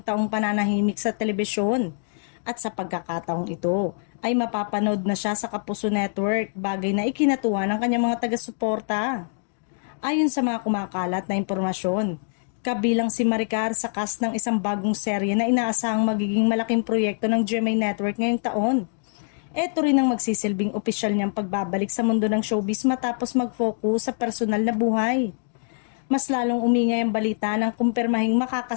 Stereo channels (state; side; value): silent; right; digital silence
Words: taong pananahimik sa telebisyon. At sa pagkakataong ito ay mapapanood na siya sa Kapuso Network, bagay na ikinatuwa ng kanyang mga taga-suporta. Ayon sa mga kumakalat na impormasyon, kabilang si Maricar sa cast ng isang bagong serye na inaasahang magiging malaking proyekto ng GMA Network ngayong taon. Ito rin ang magsisilbing opisyal niyang pagbabalik sa mundo ng showbiz matapos mag-focus sa personal na buhay. Mas lalong umingay ang balita ng kumpirmahing